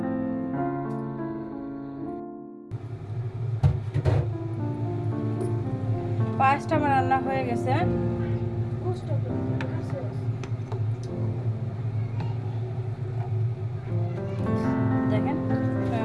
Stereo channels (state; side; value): identical; both; correlation 1.00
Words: পায়েসটা আমার রান্না হয়ে গেছে। দেখেন,